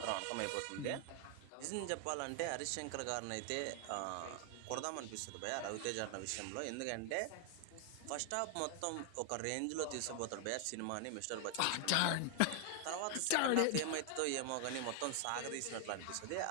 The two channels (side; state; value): both; different; correlation 0.00